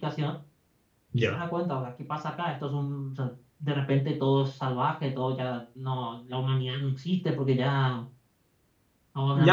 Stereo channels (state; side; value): identical; both; correlation 1.00